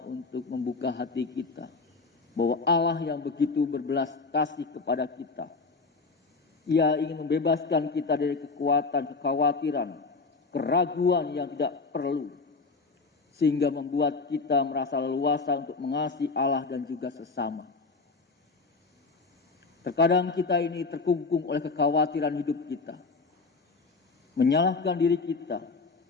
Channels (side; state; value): right; quieter; 4.1 dB